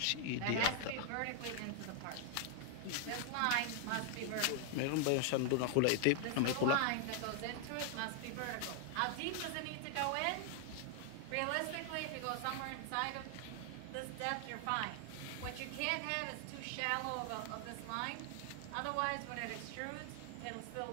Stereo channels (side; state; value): both; different; correlation 0.00